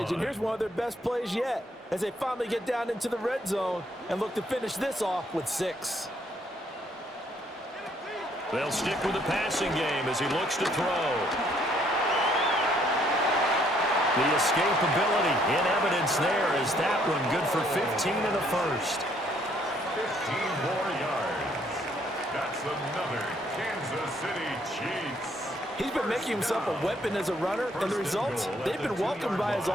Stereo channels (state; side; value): normal; both; correlation 0.67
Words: And here's one of their best plays yet as they finally get down into the red zone and look to finish this off with 6. They'll stick with the passing game as he looks to throw. The escapability in evidence there is that one good for 15 in the first. 15 more yards. That's another Kansas City Chiefs. He's been making himself a weapon as a runner, and the results, they've been welcomed by his